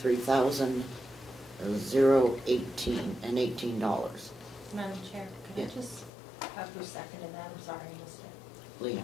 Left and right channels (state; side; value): drops out; right; at 6.1 s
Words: Madam Chair, can Yeah. I just have who seconded that? I'm sorry, I missed it. Lena,